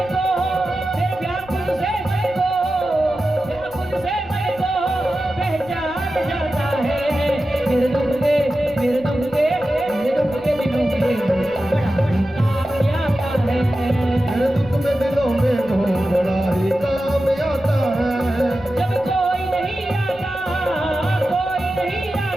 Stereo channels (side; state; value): right; noise; rumble, 22 dB below the sound